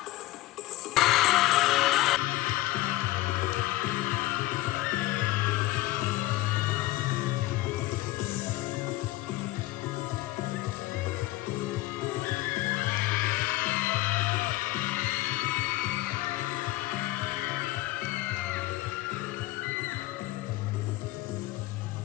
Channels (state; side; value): quieter; right; 17.8 dB